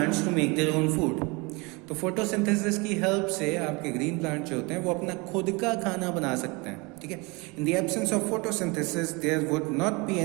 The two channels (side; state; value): left; quieter; 27.3 dB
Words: to make their own food. तो फोटोसिंथेसिस की हेल्प से आपके ग्रीन प्लांट जो होते हैं वो अपना खुद का खाना बना सकते हैं। ठीक है, in the absence of photosynthesis there would not be